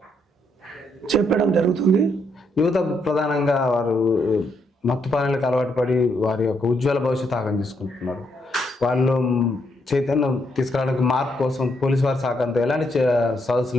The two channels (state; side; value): normal; both; correlation 0.76